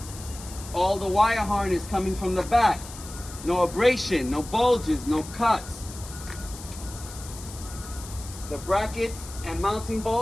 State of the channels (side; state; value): left; noise; hiss, 14 dB below the sound